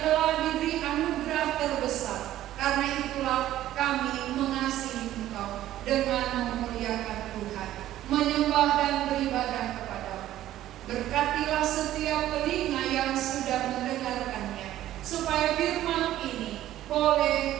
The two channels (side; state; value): left; quieter; 13.5 dB